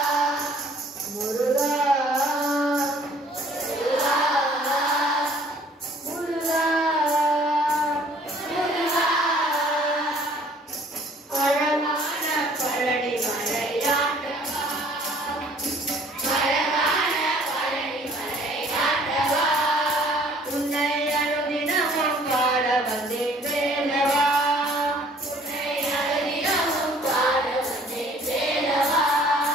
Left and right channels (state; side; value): normal; both; correlation 0.56